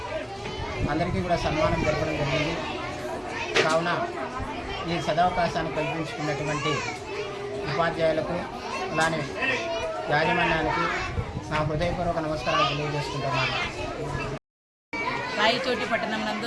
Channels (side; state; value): both; identical; correlation 1.00